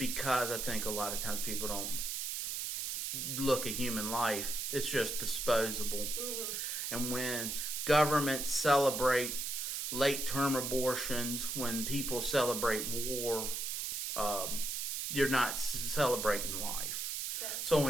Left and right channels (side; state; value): right; noise; hiss, 2 dB below the sound